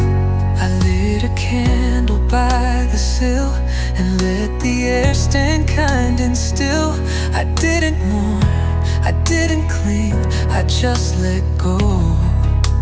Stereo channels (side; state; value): both; identical; correlation 1.00